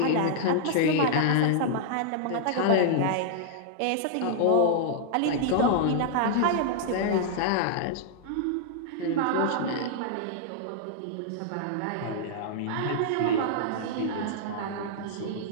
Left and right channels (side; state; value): both; different; correlation -0.01